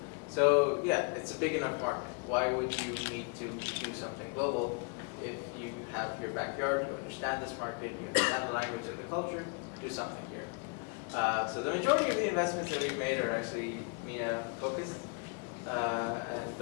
So yeah, it's a big enough market. Why would you need to do something global if you have your backyard, you understand this market, you understand the language and the culture, do something here. So the majority of the investments that we've made are actually MENA focused, and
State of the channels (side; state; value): right; quieter; 35.6 dB